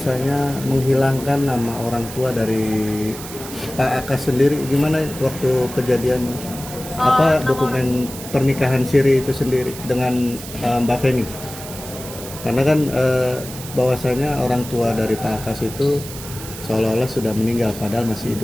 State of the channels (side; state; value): right; noise; hiss, 12 dB below the sound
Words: menghilangkan nama orang tua dari Pak Akas sendiri, gimana waktu kejadian dokumen pernikahan siri itu sendiri dengan Mbak Feni? Karena kan bahwasanya orang tua dari Pak Akas itu seolah-olah sudah meninggal padahal masih